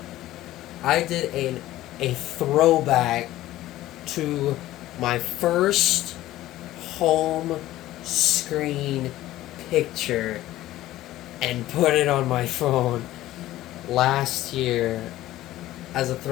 I did a throwback to my first home screen picture and put it on my phone last year as a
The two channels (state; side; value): quieter; right; 15.3 dB